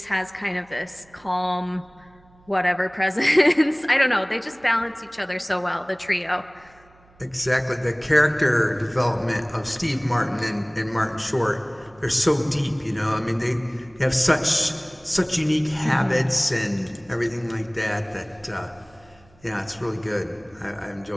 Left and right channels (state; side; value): noise; right; hum, 29 dB below the sound